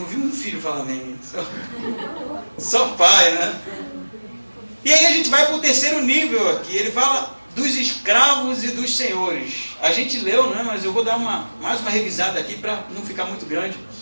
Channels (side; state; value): both; inverted; correlation -1.00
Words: vi um filho falar amém. Só pai, né? E aí a gente vai para o terceiro nível aqui. Ele fala dos escravos e dos senhores. A gente leu, né? Mas eu vou dar mais uma revisada aqui para não ficar muito grande.